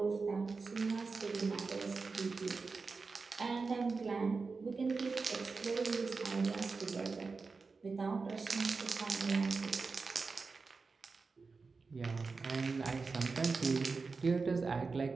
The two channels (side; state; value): left; quieter; 4.4 dB